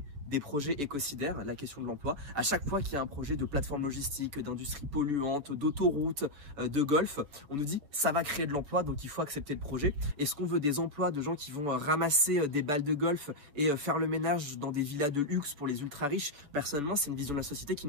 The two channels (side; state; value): left; late; 7.1 ms